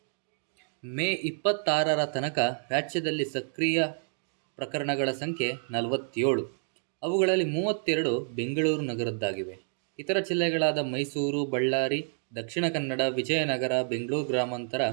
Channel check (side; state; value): left; silent; digital silence